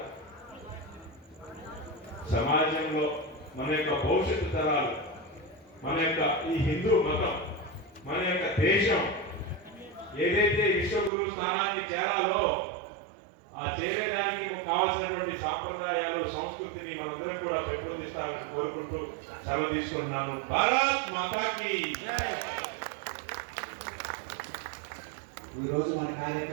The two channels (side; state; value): left; drops out; at 11.1 s